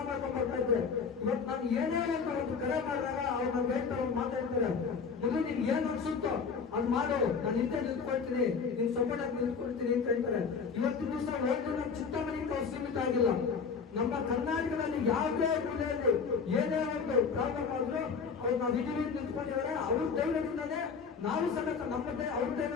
ಮಾಡ್ಕೊಂಡು ಬರ್ತಾ ಇದ್ದೆ. ಇವತ್ತು ನಾನು ಏನೇ ಒಂದು ಕರೆ ಮಾಡಿದಾಗ ಅವ್ರು ನನ್ಗೆ ಹೇಳ್ತಾರೆ, ಮಾತಾಡ್ತಾರೆ, ಮೊದಲು ನಿನ್ ಏನ್ ಅನ್ಸುತ್ತೋ ಅದ್ ಮಾಡು, ನಾನು ಹಿಂದೆ ನಿಂತ್ಕೊಳ್ತೀನಿ, ನಿನ್ ಸಪೋರ್ಟ್ ಆಗಿ ನಿಂತ್ಕೊಳ್ತೀನಿ ಅಂತ ಹೇಳ್ತಾರೆ. ಇವತ್ತಿನ ದಿವಸ ಒಂದು ನಮ್ಮ ಚಿಂತಾಮಣಿಗೆ ಅವ್ರು ಸೀಮಿತ ಆಗಿಲ್ಲ. ನಮ್ಮ ಕರ್ನಾಟಕದಲ್ಲಿ ಯಾವುದೇ ಮೂಲೆಯಲ್ಲಿ ಏನೇ ಒಂದು ಪ್ರಾಬ್ಲಮ್ ಆದ್ರೂ ಅವ್ರು ನಾವು ಇದೀವಿ ನಿಂತ್ಕೊಂಡಿದ್ದಾರೆ. ಅವ್ರ ಧೈರ್ಯದಿಂದಾನೇ ನಾವು ಸಮೇತ ನಮ್ಮದೇ ಅವ್ರ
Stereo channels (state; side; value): quieter; right; 5.7 dB